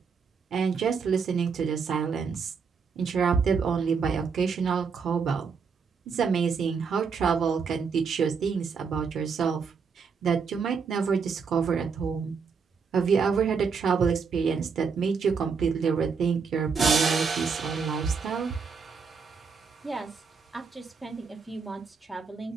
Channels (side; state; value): left; quieter; 5.6 dB